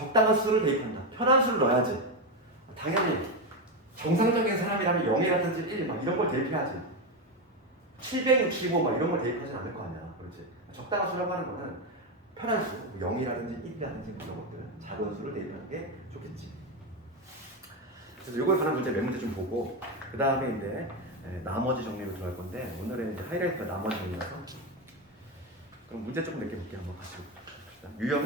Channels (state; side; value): normal; both; correlation 0.11